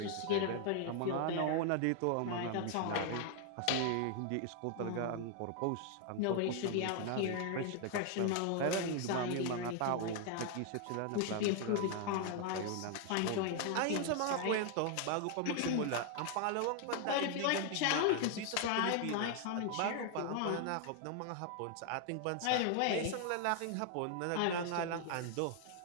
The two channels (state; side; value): different; both; correlation 0.00